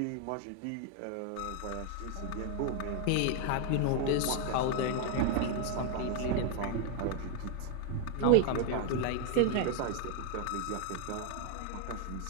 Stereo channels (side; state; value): both; different; correlation 0.00